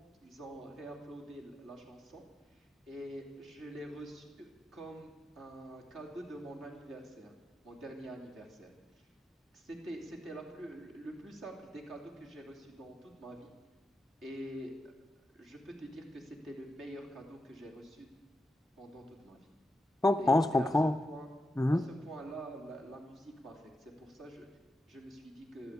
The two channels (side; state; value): both; normal; correlation 0.87